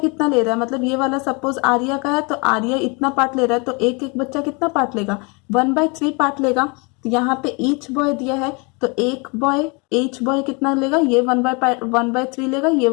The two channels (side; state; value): right; quieter; 30.4 dB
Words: ले रहा है? मतलब ये वाला सपोज आर्या का है तो आर्या इतना पार्ट ले रहा है, तो एक एक बच्चा कितना पार्ट लेगा? 1/3 पार्ट लेगा। तो यहाँ पे ईच बॉय दिया है, तो एक बॉय ईच बॉय कितना लेगा, ये 1/3 लेगा, ये